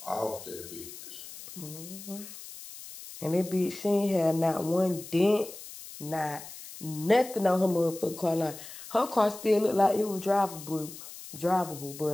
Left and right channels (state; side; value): noise; left; hiss, 14 dB below the sound